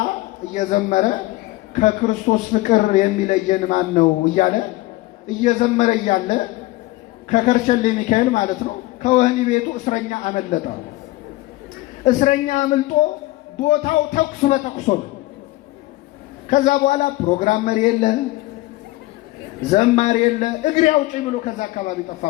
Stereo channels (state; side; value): quieter; right; 18.8 dB